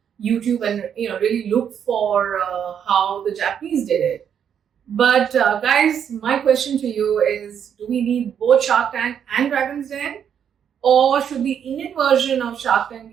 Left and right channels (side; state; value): left; quieter; 8.4 dB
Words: YouTube and really look for how the Japanese did it. But guys, my question to you is: do we need both Shark Tank and Dragon's Den, or should the Indian version of Shark Tank